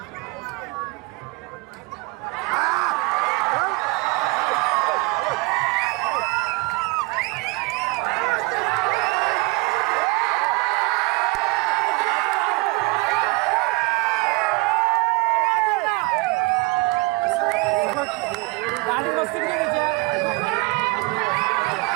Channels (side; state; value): left; quieter; 26.3 dB